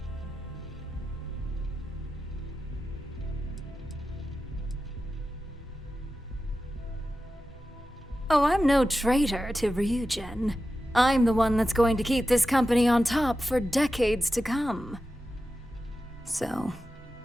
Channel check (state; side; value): normal; both; correlation 0.92